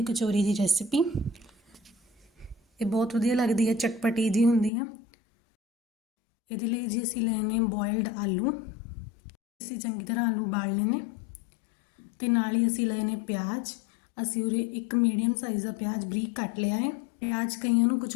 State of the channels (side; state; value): right; drops out; at 4.7 s